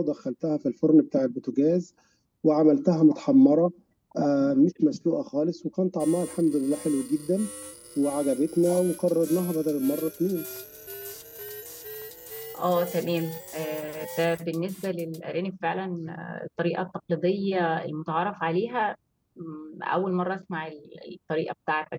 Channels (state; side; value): identical; both; correlation 1.00